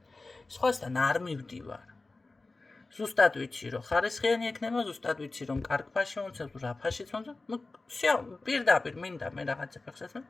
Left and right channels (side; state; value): right; quieter; 3.4 dB